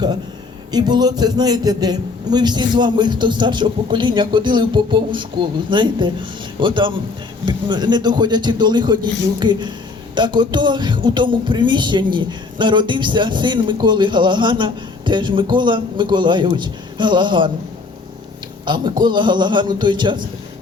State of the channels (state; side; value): quieter; right; 4.0 dB